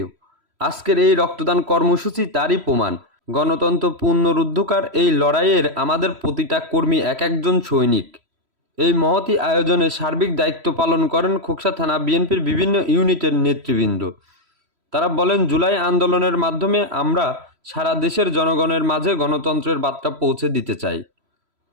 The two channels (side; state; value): left; late; 3.1 ms